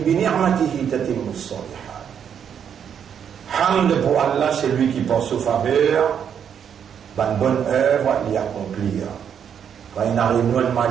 ni'matihi tatimmu as-salihat. Hamd pour Allah, c'est lui qui pense aux faveurs, une bonne œuvre, l'y accomplir. Quand il arrive nous un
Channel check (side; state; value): left; quieter; 8.2 dB